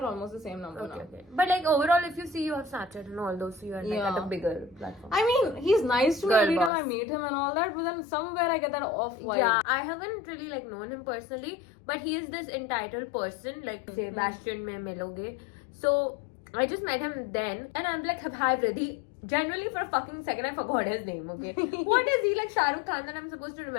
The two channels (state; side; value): drops out; right; at 6.7 s